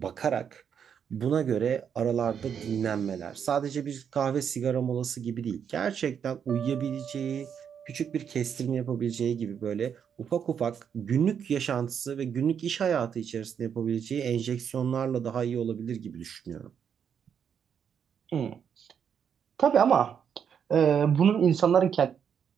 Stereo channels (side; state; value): left; quieter; 7.8 dB